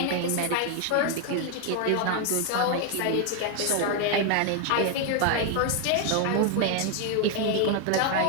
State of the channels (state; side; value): different; both; correlation 0.01